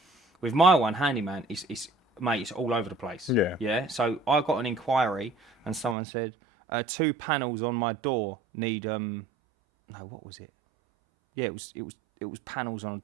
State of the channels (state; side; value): drops out; left; at 6.0 s